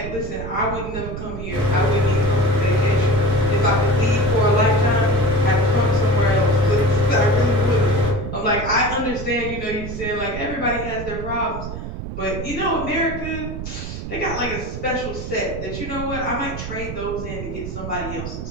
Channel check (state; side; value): noise; right; rumble, 7 dB below the sound